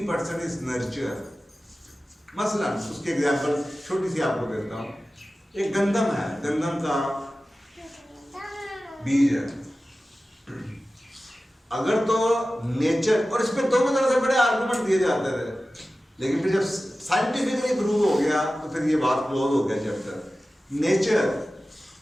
is nurture. मसलन उसकी एग्जाम्पल छोटी सी आपको देता हूँ। एक गंदम है, गंदम का बीज है। अगर तो नेचर, और इस पे दोनों तरह से बड़े आर्गुमेंट दिए जाते थे, लेकिन फिर जब साइंटिफिकली प्रूव हो गया तो फिर ये बात क्लोज हो गया चैप्टर। नेचर,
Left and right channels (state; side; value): normal; both; correlation 0.95